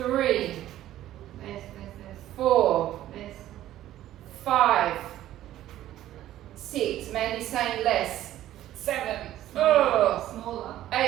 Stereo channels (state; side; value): quieter; left; 13.4 dB